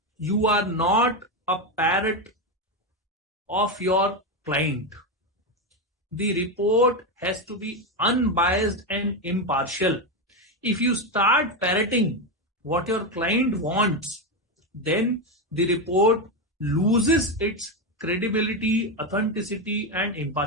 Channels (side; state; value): both; normal; correlation 0.11